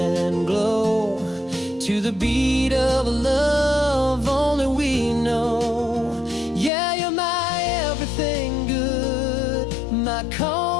glow, to the beat of a love only we know. Yeah, you're my everything good, my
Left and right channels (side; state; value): right; drops out; at 6.7 s